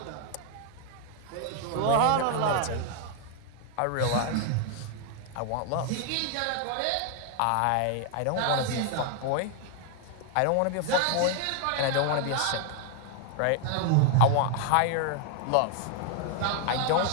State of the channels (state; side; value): different; both; correlation 0.00